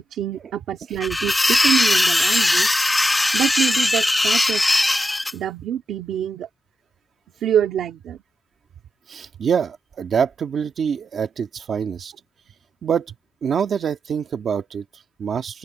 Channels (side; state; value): both; normal; correlation 0.86